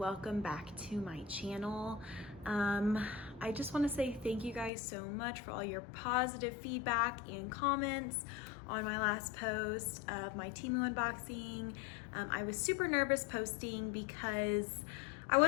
back to my channel. I just want to say thank you guys so much for all your positive feedback and comments on my last post of my Temu unboxing. I was super nervous posting because I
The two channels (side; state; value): right; drops out; at 4.7 s